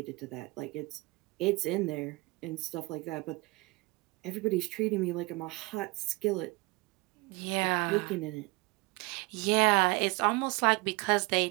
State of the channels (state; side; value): quieter; left; 24.5 dB